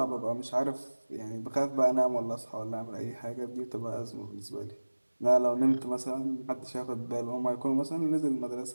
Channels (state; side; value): inverted; both; correlation -1.00